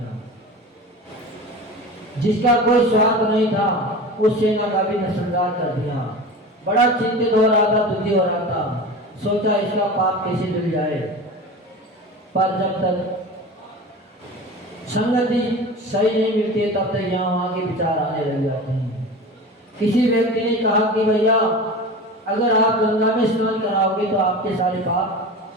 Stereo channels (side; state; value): both; normal; correlation 0.33